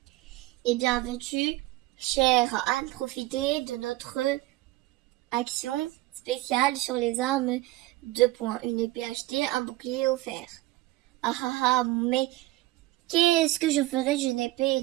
Eh bien, veux-tu, chère Anne, profiter de notre action spéciale sur les armes 2 points. Une épée achetée, un bouclier offert. Ah ah ah, mais qu'est-ce que je ferais d'une épée et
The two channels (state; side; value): quieter; left; 18.3 dB